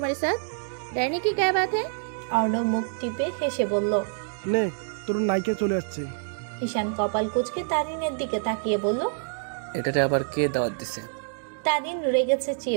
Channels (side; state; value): left; silent; digital silence